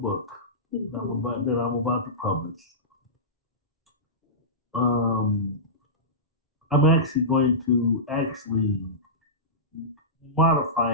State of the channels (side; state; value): both; normal; correlation -0.17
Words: that I'm about to publish. Um, I'm actually going to actually